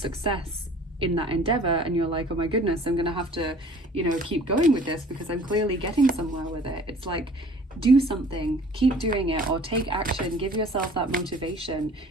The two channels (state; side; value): normal; both; correlation 0.50